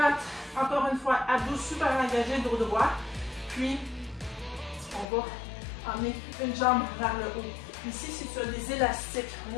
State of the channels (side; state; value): right; drops out; at 5.1 s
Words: Encore une fois, abdos super engagés, dos droit. Puis, on va emmener une jambe vers le haut. Ici, si tu as des élastiques, un